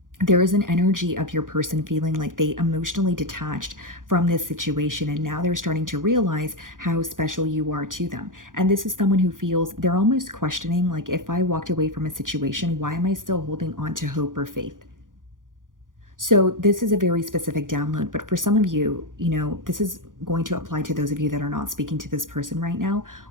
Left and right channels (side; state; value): left; late; 0.89 ms